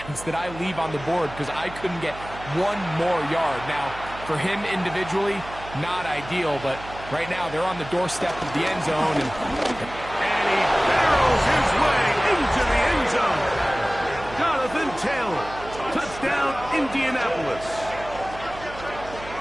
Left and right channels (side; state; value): right; noise; hum, 15 dB below the sound